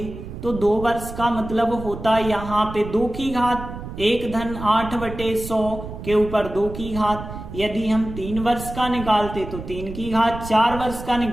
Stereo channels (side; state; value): right; noise; rumble, 10 dB below the sound